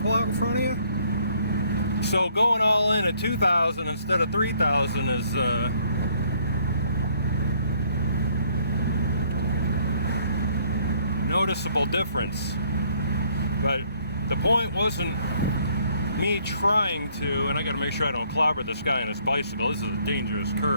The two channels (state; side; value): inverted; both; correlation -0.64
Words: pull out in front of you? So going all in at 2,000 instead of 3,000 is noticeable difference. But the point wasn't me trying to, and I gotta make sure I don't clobber this guy on his bicycle. This is a dangerous